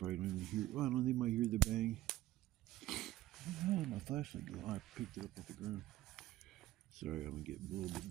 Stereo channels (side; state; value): left; quieter; 15.8 dB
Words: don't even hear. Well, I don't know. They might hear the bang. Oh, my flashlight go. Oh, I picked it up off the ground. Sorry, I'm gonna get a little bit